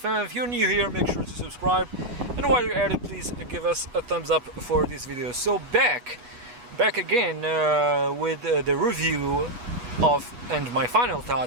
If you're new here, make sure to subscribe, and while you're at it, please give us a thumbs up for this video. So back again with the review of and my final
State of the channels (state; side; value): late; left; 8.3 ms